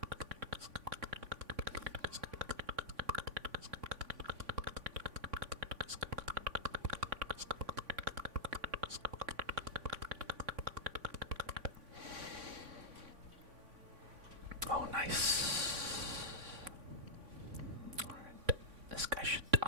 Oh, nice. Alright, this guy should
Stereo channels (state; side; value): late; left; 3.5 ms